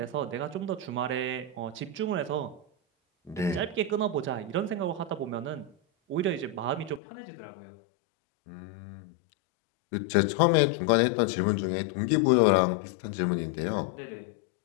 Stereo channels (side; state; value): right; drops out; at 7.0 s